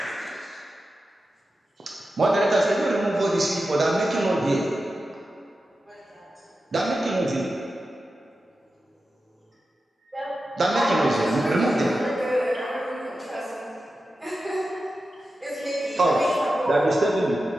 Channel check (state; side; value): normal; both; correlation 0.92